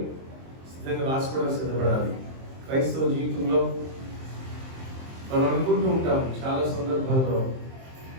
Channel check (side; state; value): left; late; 23 ms